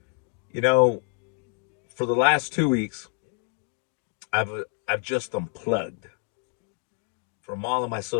You know, for the last 2 weeks, I've I've just unplugged from all of my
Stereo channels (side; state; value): right; quieter; 39.5 dB